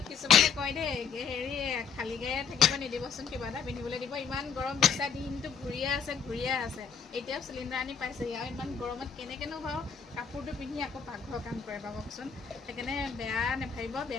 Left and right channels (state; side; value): quieter; right; 6.4 dB